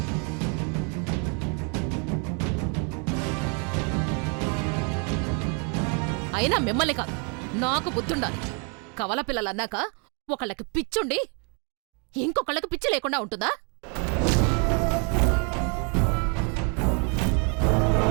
అయినా మిమ్మల్ని కాదు, నాకు బుద్ధుండాలి. కవల పిల్లలన్నాక ఒకళ్ళకి పిచ్చుండి ఇంకొకళ్ళకి పిచ్చి లేకుండా ఉంటుందా?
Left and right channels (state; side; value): quieter; left; 36.8 dB